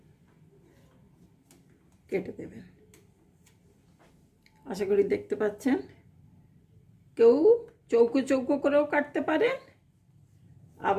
কেটে দেবেন। আশা করি দেখতে পাচ্ছেন। কেউ চৌকো চৌকো করেও কাটতে পারেন,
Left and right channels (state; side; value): identical; both; correlation 1.00